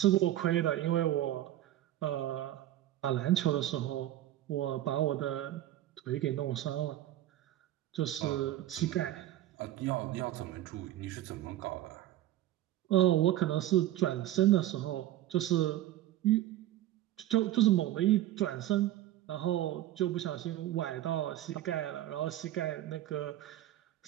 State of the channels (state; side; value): quieter; left; 13.5 dB